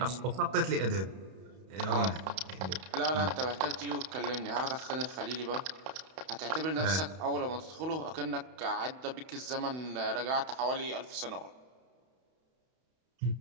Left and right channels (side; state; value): left; late; 32 ms